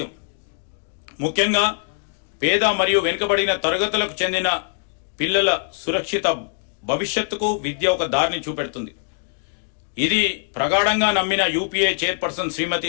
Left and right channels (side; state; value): right; silent; digital silence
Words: ముఖ్యంగా పేద మరియు వెనుకబడిన తరగతులకు చెందిన పిల్లల సురక్షిత భవిష్యత్తుకు విద్య ఒక దారిని చూపెడుతుంది. ఇది ప్రగాఢంగా నమ్మిన యూపీఏ చైర్పర్సన్